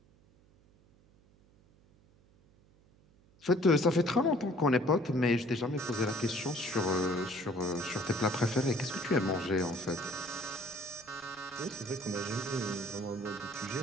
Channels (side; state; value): right; noise; hum, 30 dB below the sound